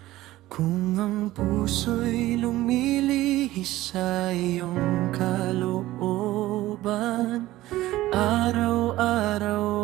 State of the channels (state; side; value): quieter; left; 16.4 dB